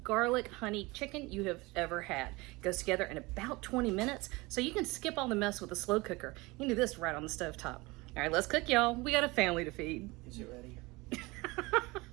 garlic honey chicken you have ever had. It goes together in about 20 minutes, so you can skip all the mess with a slow cooker. You can do this right on the stove top. All right, let's cook, y'all. We got a family to feed. Is it ready?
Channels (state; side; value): quieter; left; 23.3 dB